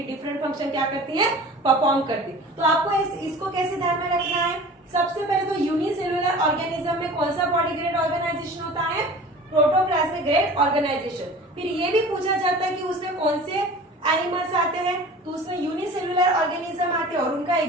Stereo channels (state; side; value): normal; both; correlation 0.41